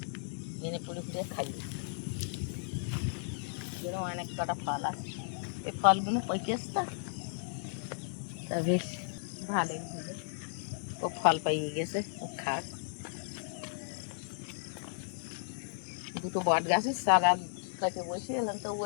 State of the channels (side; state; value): right; silent; digital silence